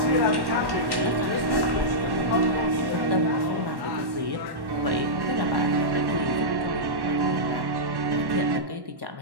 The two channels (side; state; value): left; late; 1.1 ms